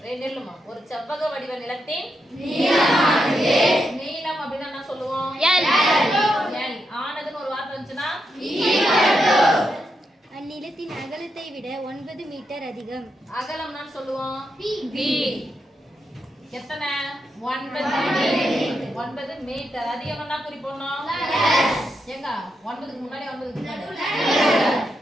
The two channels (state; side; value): normal; both; correlation 0.84